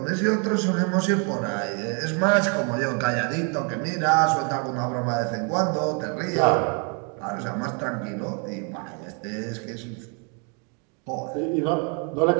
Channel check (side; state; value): left; quieter; 37.2 dB